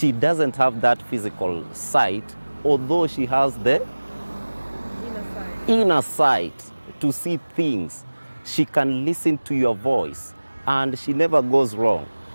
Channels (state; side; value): inverted; both; correlation -1.00